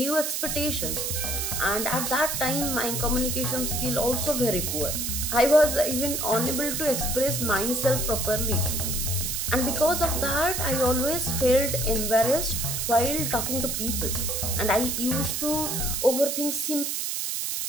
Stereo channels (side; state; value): right; noise; hiss, 1 dB below the sound